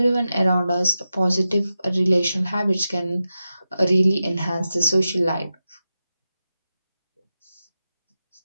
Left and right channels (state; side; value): inverted; both; correlation -0.91